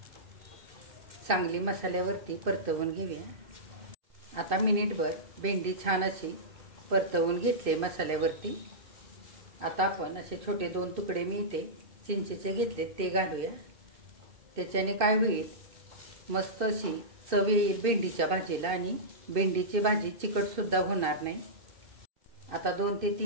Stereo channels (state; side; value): late; left; 2.5 ms